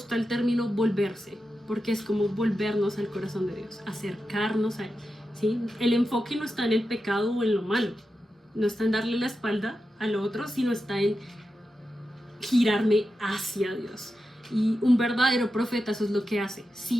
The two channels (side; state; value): both; normal; correlation 0.90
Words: el término volverse, porque es como volvernos al corazón de Dios, acercarnos a Él, ¿sí? El enfoque no está en el pecado o en lo malo, no está en darle la espalda al otro, sino está en girarme hacia Dios. Y un verdadero profeta eso es lo que hace.